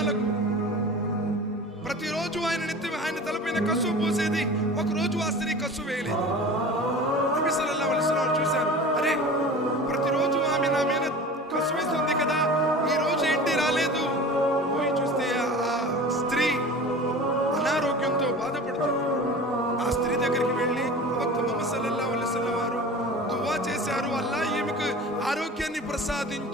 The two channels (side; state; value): both; normal; correlation 0.37